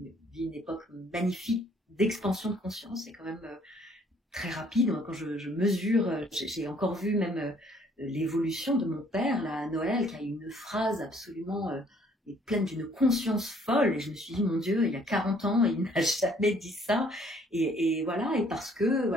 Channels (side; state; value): both; normal; correlation 0.62